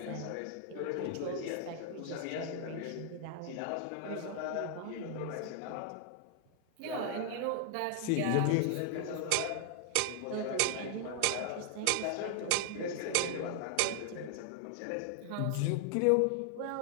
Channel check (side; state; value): both; different; correlation 0.00